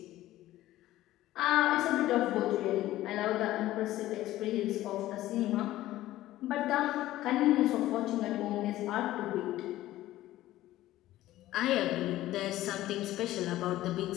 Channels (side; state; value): right; quieter; 15.2 dB